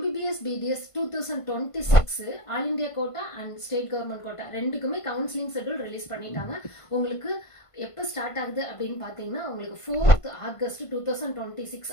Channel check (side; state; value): right; late; 1.5 ms